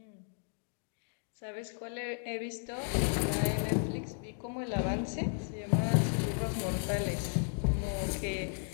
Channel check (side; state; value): right; silent; 55 dB below the other